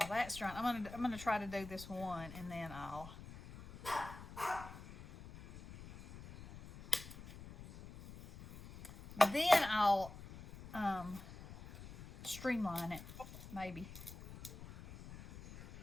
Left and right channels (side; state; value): left; noise; rumble, 14 dB below the sound